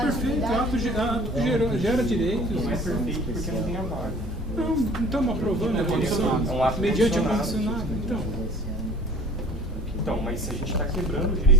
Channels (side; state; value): both; normal; correlation 0.48